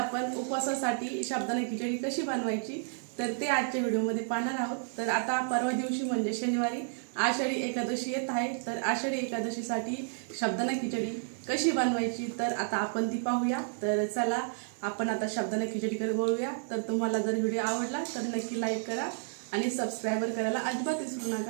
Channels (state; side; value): silent; left; digital silence